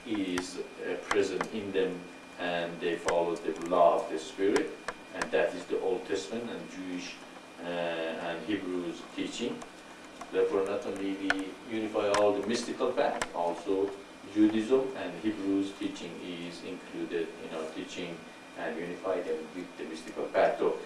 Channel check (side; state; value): both; identical; correlation 1.00